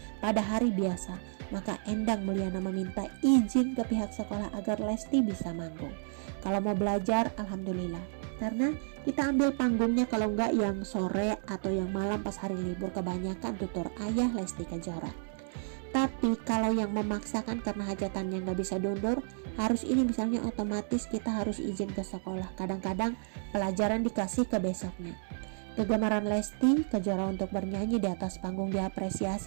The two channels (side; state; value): left; silent; digital silence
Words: pada hari biasa, maka Endang Mulyana meminta izin ke pihak sekolah agar Lesti bisa manggung. Kalau mau belajar, alhamdulillah. Karena kita ambil panggungnya kalau enggak yang sore atau yang malam pas hari libur, kebanyakan tutur ayah Lesti Kejora. Tapi kalau yang memaksakan karena hajatannya nggak bisa diundur, harus ini misalnya otomatis kita harus izin ke sekolah. Kadang-kadang pelajaran dikasih ke besoknya. Kegemaran Lesti Kejora untuk bernyanyi di atas panggung